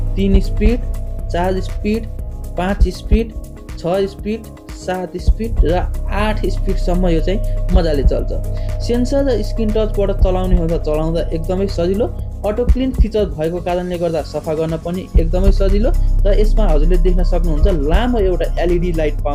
3 speed, 4 speed, 5 speed, 6 speed, 7 speed र 8 स्पिडसम्म यो चाहिँ मजाले चल्छ। सेन्सर र स्क्रिन टचबाट चलाउने हो त चलाउँदा एकदमै सजिलो। अटो क्लिन फिचर भएको कारणले गर्दा सफा गर्न पनि एकदमै सजिलो र यसमा हजुरले देख्न सक्नुहुन्छ लामो एउटा एलइडी लाइट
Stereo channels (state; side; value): identical; both; correlation 1.00